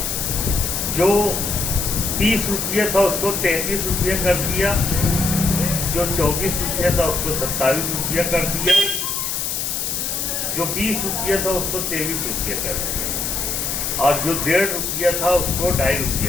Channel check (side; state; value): left; noise; hiss, 1 dB below the sound